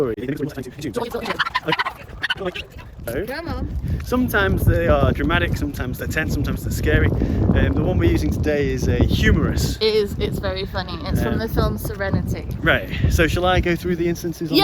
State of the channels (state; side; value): identical; both; correlation 1.00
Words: Come on. Sometimes they are dramatic, sometimes they're tense, sometimes they're scary. The one we're using today is a humorous. It's very funny. It's from the film Serenity. Right, so shall I go through the instances?